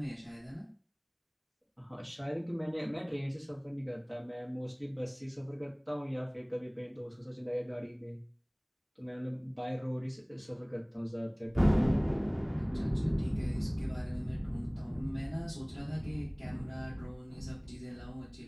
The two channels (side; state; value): both; identical; correlation 1.00